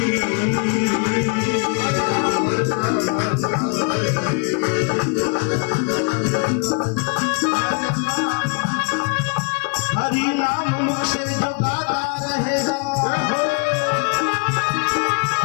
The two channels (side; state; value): right; quieter; 33.6 dB